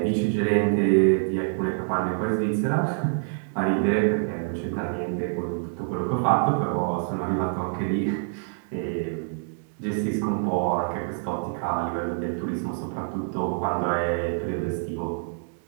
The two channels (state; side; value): silent; left; digital silence